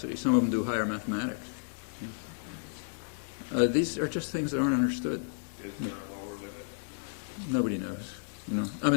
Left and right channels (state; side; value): silent; right; 56 dB below the other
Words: Some of them do higher mathematics. These are just things that aren't understood. Is there a lower limit? Nobody knows. I